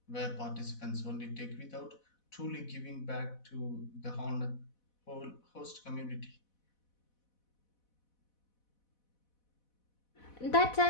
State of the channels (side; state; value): right; late; 4.1 ms